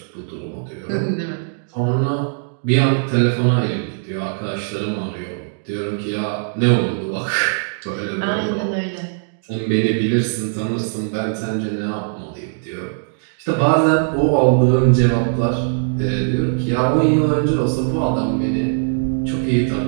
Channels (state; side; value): silent; left; digital silence